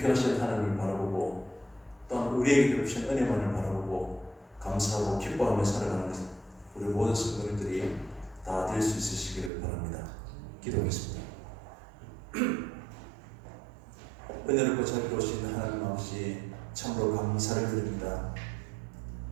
하나님을 바라보고 또한 우리에게 베푸신 은혜만을 바라보고 감사하고 기뻐하며 살아가는 것은 우리 모든 성도님들이 다 될 수 있으시기를 바랍니다. 기도하겠습니다. 은혜롭고 자비로우신 하나님 아버지 참으로 감사를 드립니다.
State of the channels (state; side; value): drops out; left; at 9.5 s